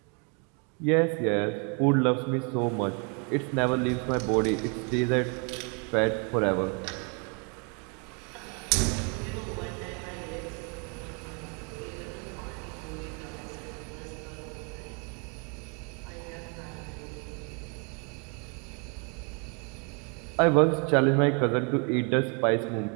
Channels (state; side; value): quieter; left; 35.9 dB